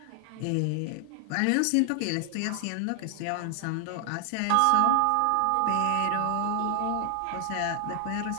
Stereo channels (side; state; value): both; different; correlation 0.00